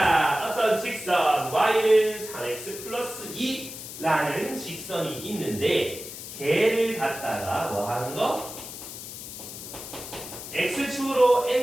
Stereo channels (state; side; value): noise; left; hiss, 11 dB below the sound